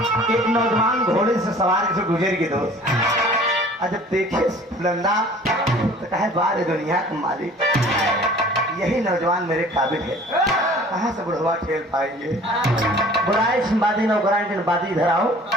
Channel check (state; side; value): normal; both; correlation 0.49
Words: एक नौजवान घोड़े से सवार से गुजर के दोस्त और जब देखे फुलंदा तो कहे बार दुनिया का मालिक यही नौजवान मेरे काबिल है कहाँ से बुढ़वा ठेल पाएंगे। बुढ़ाई बादी नौकरानी के बादी इधर आओ